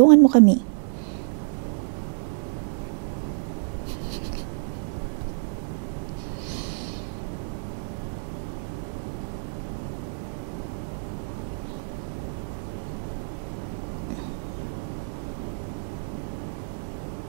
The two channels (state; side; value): silent; left; digital silence